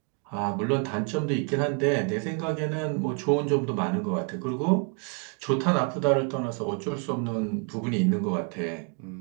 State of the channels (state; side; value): quieter; left; 37.2 dB